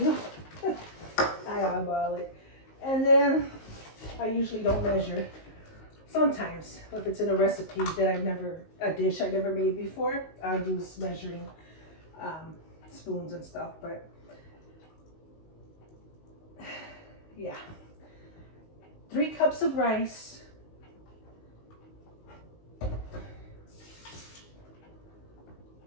I eyeball it. And then I usually don't measure. Sometimes, if it's in a recipe that a dish I never made before, I use measuring spoons and stuff, but yeah. 3 cups of rice.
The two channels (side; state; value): right; late; 19 ms